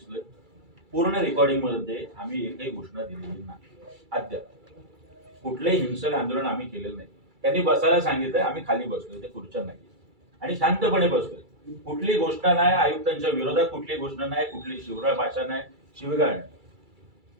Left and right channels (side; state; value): left; late; 2.3 ms